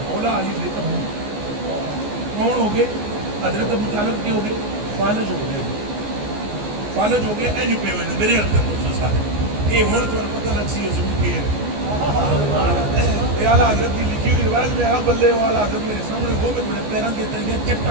مولا علی بے تبو کون ہو گئے حضرت ابو طالب کے ہو گئے فالج ہو گئے فالج ہو گئے اینج پہ ہوئے میرے حضرت دوسرے ساتھ یہ ہون تو پتہ لگ سی حضور کے اعلیٰ حضرت کی لکھی ہوئی روایت میں آپ بلے ہو اعلیٰ حضرت میرے سامنے ہو گئے میرے پیران کے تلگے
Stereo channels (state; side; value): late; left; 14 ms